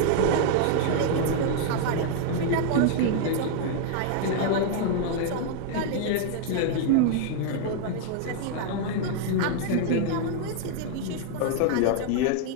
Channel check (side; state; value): both; different; correlation 0.00